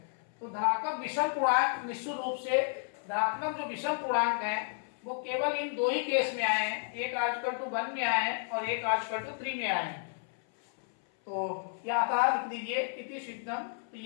तो धनात्मक विषम पूर्णांक निश्चित रूप से धनात्मक जो विषम पूर्णांक है वो केवल इन 2 ही केस में आए हैं, एक r इक्वल टू 1 में आए हैं और एक r इक्वल टू 3 में आए हैं। तो यह था, लिख दीजिए इति सिद्धम, तो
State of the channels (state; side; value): silent; right; 56 dB below the other